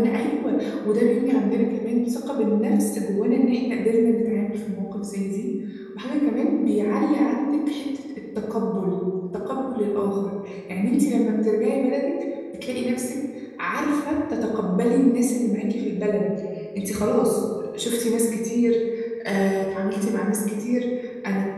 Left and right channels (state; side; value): identical; both; correlation 1.00